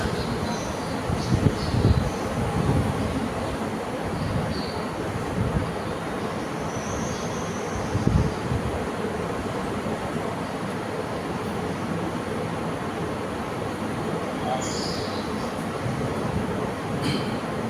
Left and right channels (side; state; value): both; identical; correlation 1.00